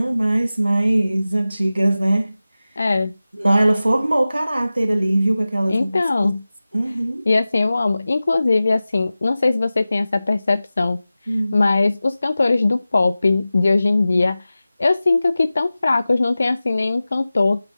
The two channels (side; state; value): both; inverted; correlation -0.96